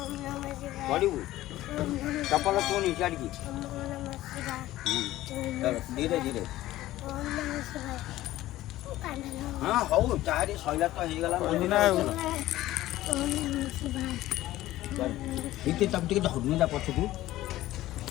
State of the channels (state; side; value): quieter; right; 15.6 dB